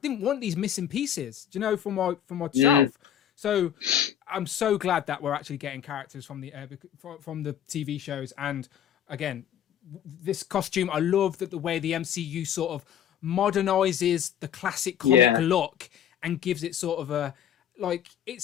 want these missing pieces, do you know, from my shelf. So I'm so glad that we're actually getting characters from the TV shows. And again, this costume, I love that the way the MCU sort of modernizes the classic comic look and gives it sort of a, like, it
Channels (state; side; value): quieter; right; 9.8 dB